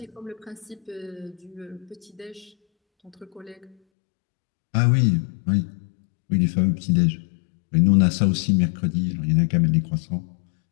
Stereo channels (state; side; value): drops out; right; at 3.8 s